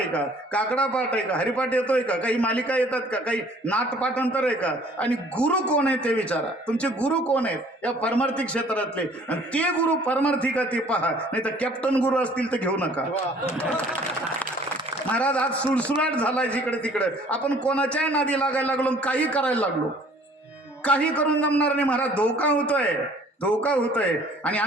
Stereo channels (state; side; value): normal; both; correlation 0.55